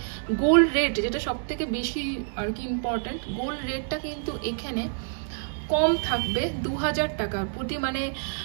গোল্ড রেট, যেটা সব থেকে বেশি আর কি ইম্পর্টেন্ট, গোল্ড রেটটা কিন্তু এখানে কম থাকবে 2000 টাকার প্রতি। মানে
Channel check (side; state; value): left; silent; digital silence